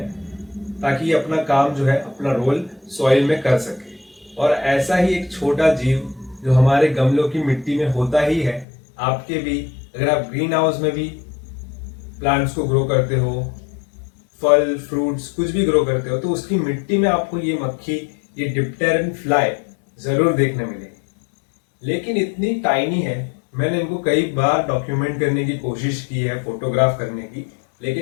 ताकि ये अपना काम जो है, अपना रोल सॉइल में कर सके। और ऐसा ही एक छोटा जीव जो हमारे गमलों की मिट्टी में होता ही है, आपके भी, अगर आप ग्रीन हाउस में भी प्लांट्स को ग्रो करते हो, फल फ्रूट्स कुछ भी ग्रो करते हो, तो उसकी मिट्टी में आपको ये मक्खी, ये डिप्टेरन फ्लाई जरूर देखने मिलेगी। लेकिन इतनी टाइनी है, मैंने इनको कई बार डॉक्यूमेंट करने की कोशिश की है, फोटोग्राफ करने की,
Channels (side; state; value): right; drops out; at 8.7 s